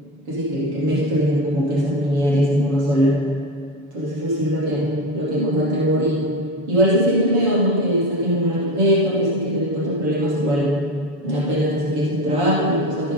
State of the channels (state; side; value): late; left; 7.0 ms